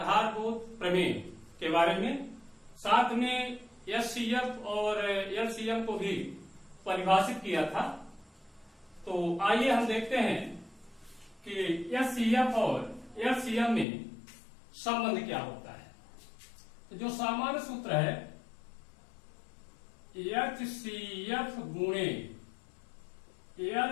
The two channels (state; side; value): drops out; right; at 13.9 s